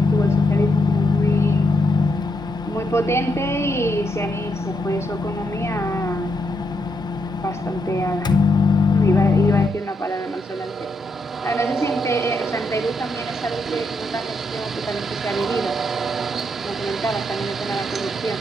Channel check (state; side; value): normal; both; correlation 0.80